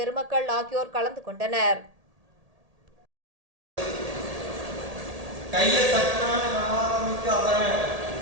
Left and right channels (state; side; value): late; left; 1.8 ms